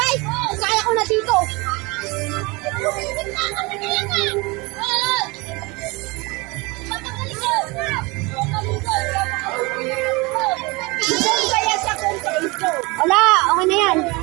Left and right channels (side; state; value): left; quieter; 25.6 dB